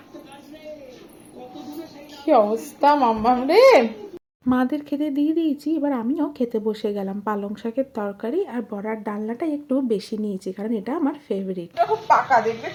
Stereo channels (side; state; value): both; identical; correlation 1.00